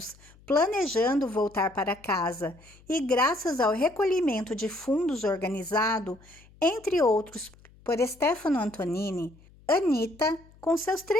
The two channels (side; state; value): left; noise; hum, 26 dB below the sound